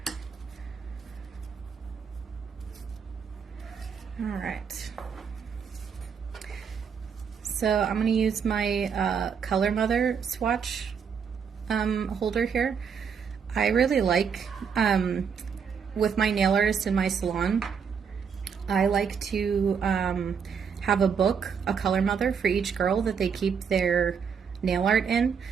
All right. So I'm going to use my Color Mother swatch holder here. I really like, with my nail artist in my salon, I like to have a book, a Color Mother for each girl that they keep their nail art in.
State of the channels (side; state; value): left; quieter; 6.6 dB